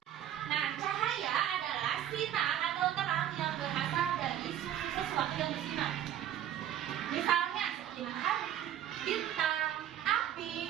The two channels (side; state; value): left; quieter; 11.0 dB